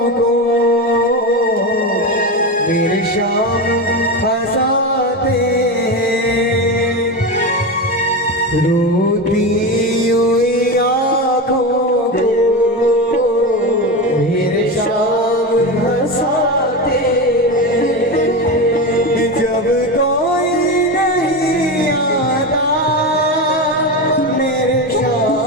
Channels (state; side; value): normal; both; correlation 0.19